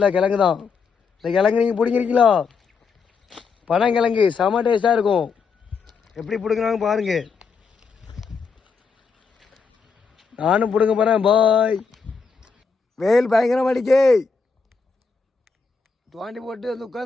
கிழங்கு தான். இந்த கிழங்கு நீங்கள் பிடிங்கிறீங்களா? பனங்கிழங்கு செம டேஸ்ட்டாக இருக்கும். எப்படி பிடுங்குறாங்க பாருங்க. நானும் பிடுங்க போகிறேன். பாய். வெயில் பயங்கரமாக அடிக்கே, தோண்டி போட்டு வந்து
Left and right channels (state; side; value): quieter; right; 5.3 dB